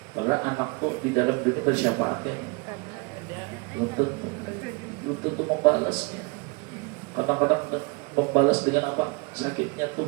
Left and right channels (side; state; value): left; quieter; 30.1 dB